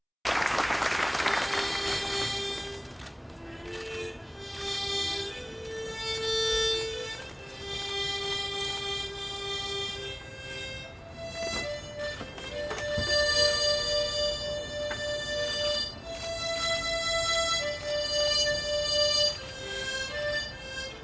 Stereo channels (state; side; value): identical; both; correlation 1.00